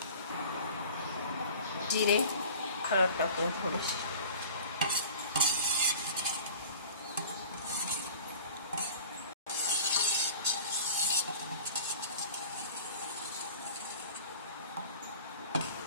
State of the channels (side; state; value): both; inverted; correlation -0.43